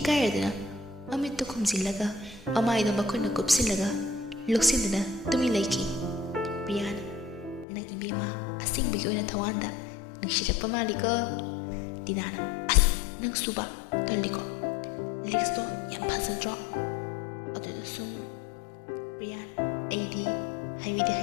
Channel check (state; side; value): drops out; right; at 7.7 s